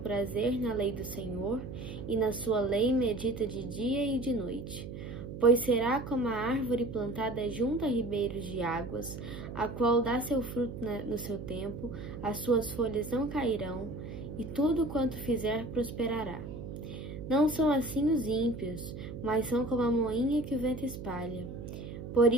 na lei do Senhor, e na sua lei medita de dia e de noite. Pois será como a árvore plantada junto a ribeiros de águas, a qual dá seu fruto no seu tempo, as suas folhas não cairão, e tudo quanto fizer prosperará. Não são assim os ímpios, mas são como a moinha que o vento espalha. Por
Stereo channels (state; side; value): noise; right; hum, 9 dB below the sound